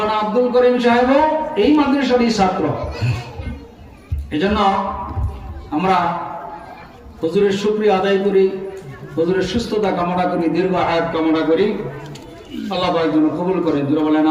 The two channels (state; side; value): identical; both; correlation 1.00